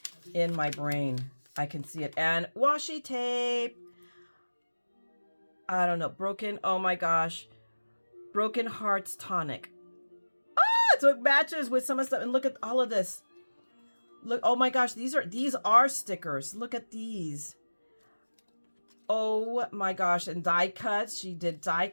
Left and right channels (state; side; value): inverted; both; correlation -1.00